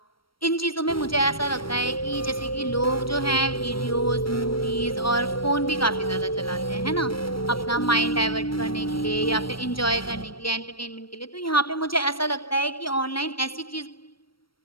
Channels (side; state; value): right; late; 0.74 ms